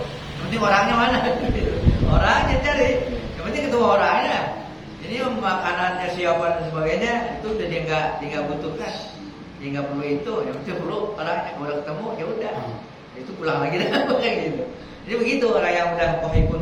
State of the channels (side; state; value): both; identical; correlation 1.00